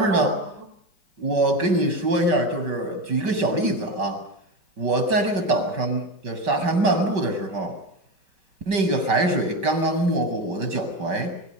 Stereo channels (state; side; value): late; left; 5.2 ms